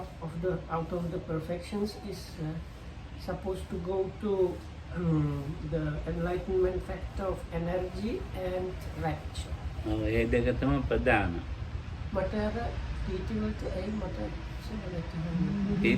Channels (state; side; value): identical; both; correlation 1.00